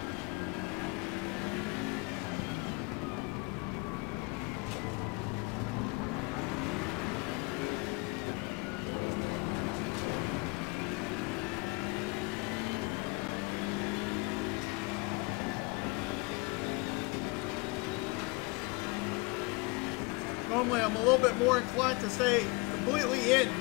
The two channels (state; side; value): quieter; right; 27.2 dB